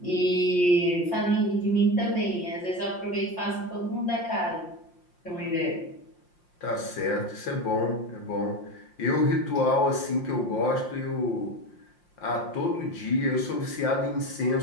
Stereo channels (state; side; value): late; right; 5.7 ms